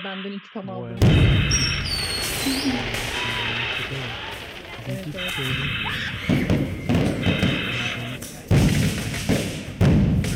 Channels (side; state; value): both; identical; correlation 1.00